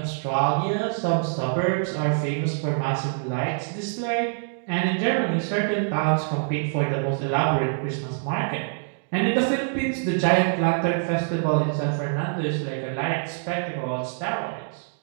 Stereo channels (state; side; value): silent; left; digital silence